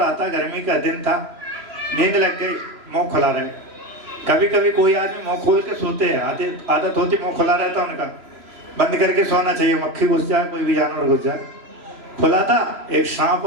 था। गर्मी का दिन था, नींद लग गई, मुंह खुला रहे। कभी कभी कोई आदमी मुंह खोल के सोते हैं, आदत होती मुंह खुला रहता उनका, बंद करके सोना चाहिए, मक्खी घुस जाए, कोई भी जानवर घुस जाए। खुला था, एक सांप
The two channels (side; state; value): left; late; 3.1 ms